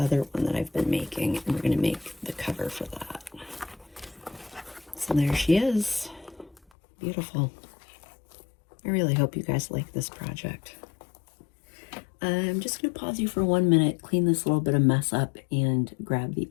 one that I've been making, and we're going to make the cover for that. So there she is. Beautiful. I really hope you guys like this project. I'm just going to pause you for 1 minute, clean this little bit of mess up, and grab the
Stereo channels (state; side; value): drops out; right; at 6.6 s